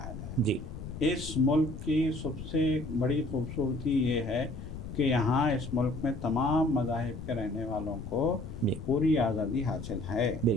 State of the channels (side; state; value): left; noise; rumble, 9 dB below the sound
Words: جائے۔ جی، اس ملک کی سب سے بڑی خوبصورتی یہ ہے کہ یہاں اس ملک میں تمام مذاہب کے رہنے والوں کو جی، پوری آزادی حاصل ہے۔